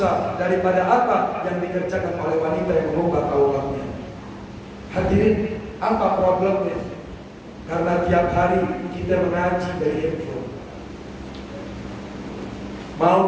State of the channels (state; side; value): identical; both; correlation 1.00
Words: daripada apa yang dikerjakan oleh wanita yang mengubah auratnya. Hadirin, apa problemnya? Karena tiap hari kita mengaji dari handphone. Mau